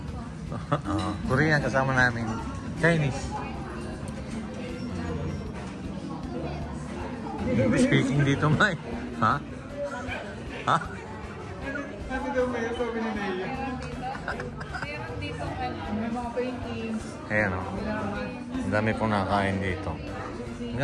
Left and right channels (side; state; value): both; identical; correlation 1.00